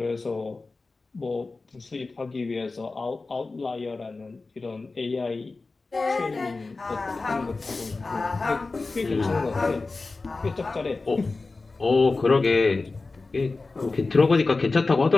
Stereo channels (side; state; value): right; quieter; 3.7 dB